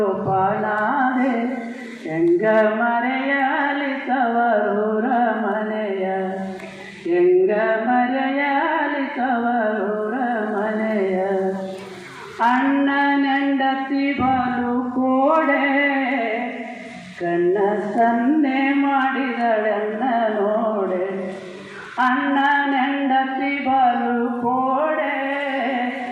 ಹೆಂಗ ಮರೆಯಲಿ ತವರೂರ ಮನೆಯ, ಹೆಂಗ ಮರೆಯಲಿ ತವರೂರ ಮನೆಯ. ಅಣ್ಣನೆಂಡತಿ ಬಲು ಕೋಡೆ, ಕಣ್ಣ ಸನ್ನೆ ಮಾಡಿದಳನ್ನ ನೋಡೆ. ಅಣ್ಣನೆಂಡತಿ ಬಲು ಕೋಡೆ,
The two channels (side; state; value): both; identical; correlation 1.00